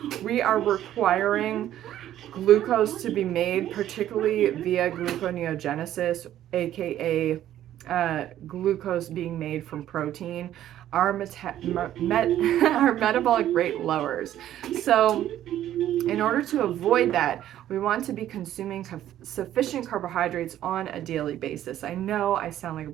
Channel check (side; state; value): left; quieter; 12.1 dB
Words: we are requiring glucose to be made, particularly via gluconeogenesis, aka glucose being made from protein, our metabolic rate lowers. So in order to avoid that, we want to be consuming sufficient carbohydrates on a daily basis. I know I sound like a